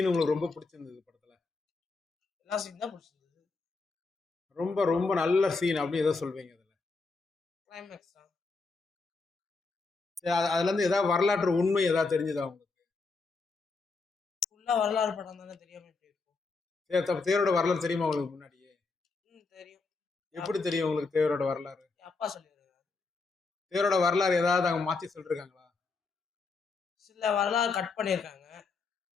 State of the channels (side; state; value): right; quieter; 4.0 dB